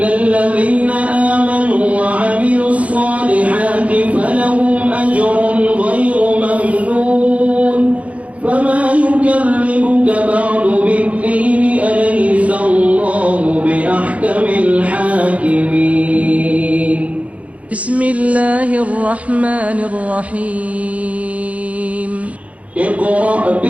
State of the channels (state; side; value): late; left; 0.066 ms